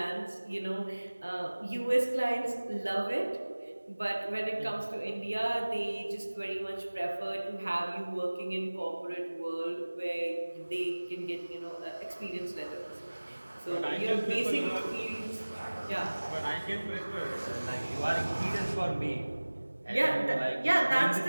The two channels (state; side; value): inverted; both; correlation -1.00